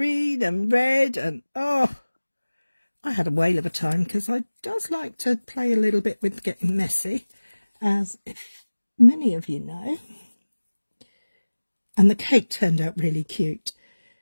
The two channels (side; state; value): both; inverted; correlation -1.00